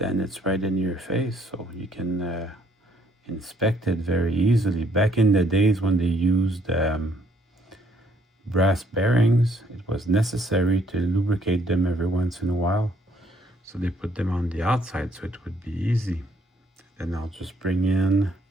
it's right in your face, so you can inspect it very easily. Back in the days when they used brass bearings, it was necessary to lubricate them every once in a while. So they put them on the outside so it would be easy. Then I'll just bring in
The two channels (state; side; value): normal; both; correlation 0.67